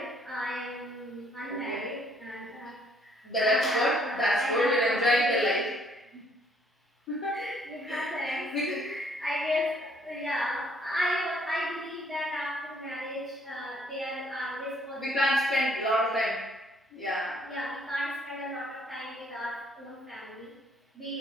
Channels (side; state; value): both; normal; correlation 0.65